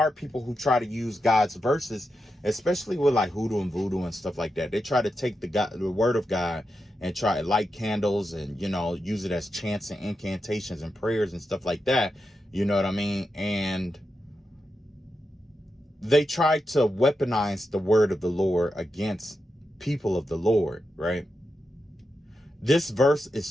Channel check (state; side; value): normal; both; correlation 0.88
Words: people who try to use God's verses, especially with like hoodoo and voodoo and stuff like that. They try to take the word of God and try to light candles and, you know, use it as chants and incantations and prayers and stuff like that. You know what I mean? And they try to weaponize the word of the Lord against people of the Lord, right? This verse